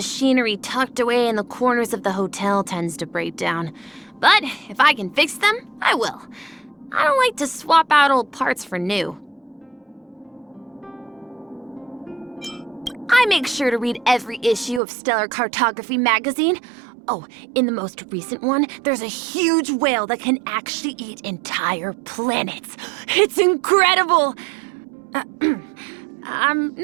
tucked away in the corners of the hotel tends to break down. But if I can fix them, I will. I don't like to swap out old parts for new. I make sure to read every issue of Stellar Cartography magazine. Oh, in the most recent one, there's a huge whale that can actually eat entire planets. It's incredible! I'm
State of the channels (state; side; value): drops out; left; at 14.8 s